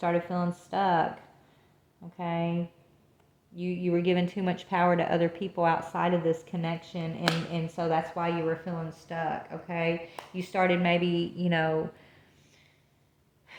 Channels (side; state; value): both; identical; correlation 1.00